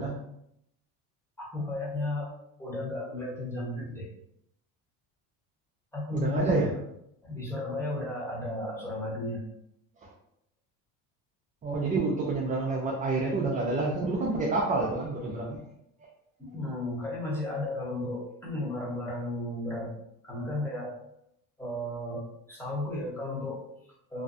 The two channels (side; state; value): both; normal; correlation 0.35